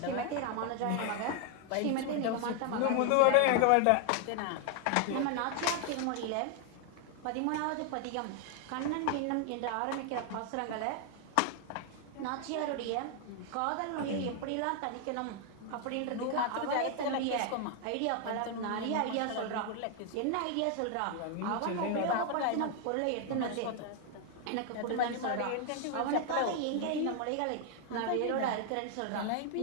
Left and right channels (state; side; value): different; both; correlation 0.00